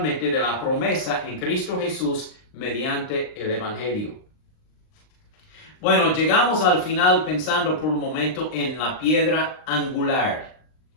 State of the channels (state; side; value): late; right; 39 ms